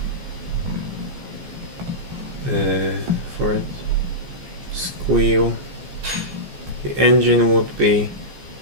it. Squeal. The engine would be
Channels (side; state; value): left; late; 14 ms